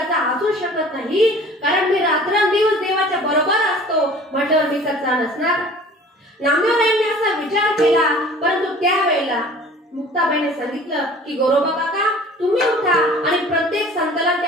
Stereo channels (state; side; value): normal; both; correlation 0.47